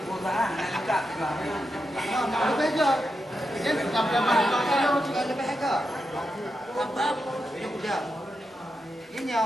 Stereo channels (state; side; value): normal; both; correlation 0.87